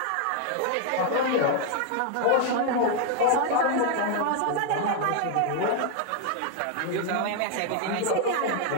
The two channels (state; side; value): different; both; correlation 0.00